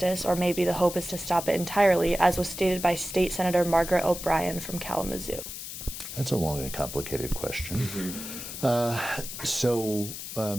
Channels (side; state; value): left; noise; hiss, 9 dB below the sound